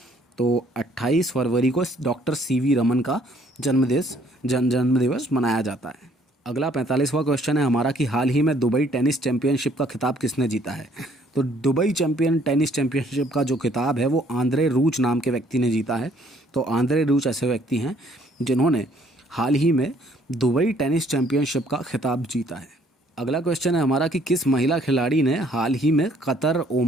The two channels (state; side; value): normal; both; correlation 0.62